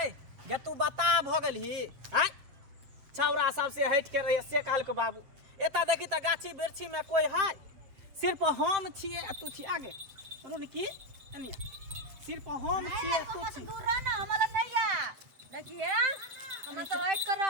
गे तू बता भ गेलही हैं छौरा सबसे हट के रही से काल के बाबू एता देखी त गाछी बिरछी में कोई है सिर्फ हम छिए तू छी आगे रुन की एनी सिर्फ हम छिए तू छी दूर रह ना हमरा नहीं आ देखिए हम तो हट कर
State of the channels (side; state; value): left; late; 7.9 ms